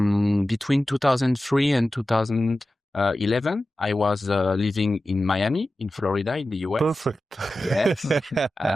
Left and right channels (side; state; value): both; normal; correlation 0.94